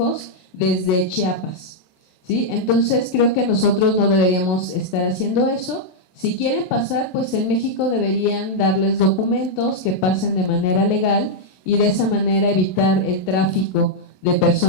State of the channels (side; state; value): right; late; 27 ms